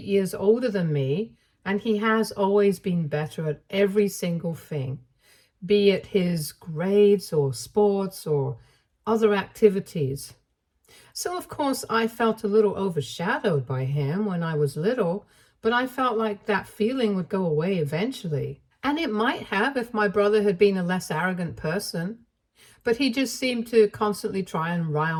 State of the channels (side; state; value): both; identical; correlation 1.00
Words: years older than me, and he has always been better at every single thing, be it his grades or sports or other activities. So, of course, I felt a little overshadowed by him when I was little, but I felt like that feeling would go away eventually. And it might have if my brother had been a less arrogant person, but he just seemed to constantly try and